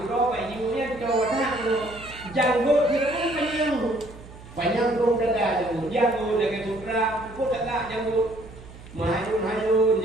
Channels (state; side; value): noise; right; hum, 18 dB below the sound